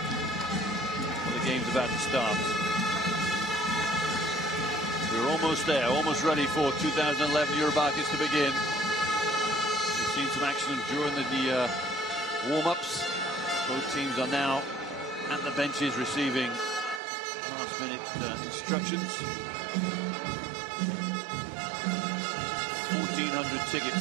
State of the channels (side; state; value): left; drops out; at 17.0 s